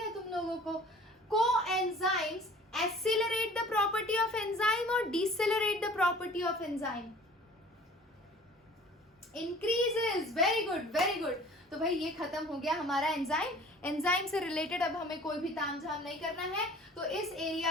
तुम लोगों को। Coenzymes Accelerate the property of enzyme or decelerate the property of enzyme? Increases. Very good, very good. तो भाई ये खत्म हो गया हमारा एंजाइम. एंजाइम से रिलेटेड अब हमें कोई भी तामझाम नहीं करना है, तो इस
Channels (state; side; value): normal; both; correlation 0.48